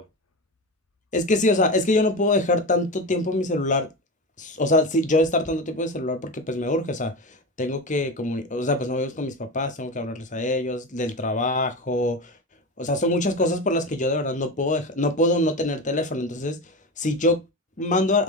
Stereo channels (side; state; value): both; normal; correlation 0.23